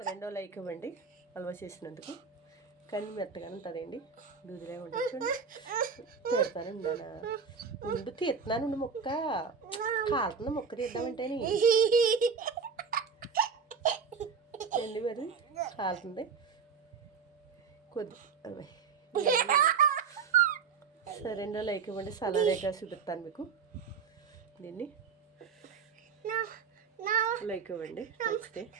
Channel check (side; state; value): left; quieter; 5.9 dB